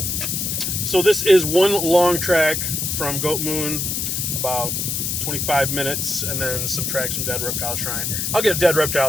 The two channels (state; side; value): noise; left; hiss, 1 dB below the sound